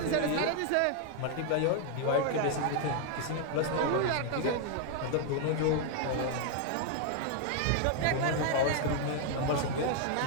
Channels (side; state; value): both; different; correlation 0.00